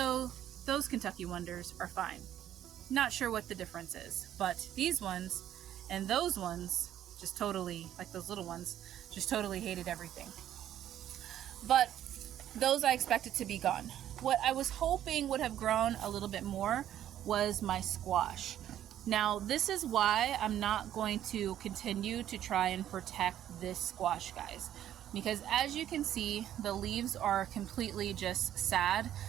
those Kentucky Wonders are fine. Not sure what the difference is, but these ones and those ones just totally, like those little ones, just totally hated everything. But those I expected to be gone. What I was hoping would have grown a little bit more was my squash. Now, this is why I'm not going to continue to try and protect this squash, guys. Because as you can see, the leaves are completely just sad.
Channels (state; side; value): quieter; left; 11.4 dB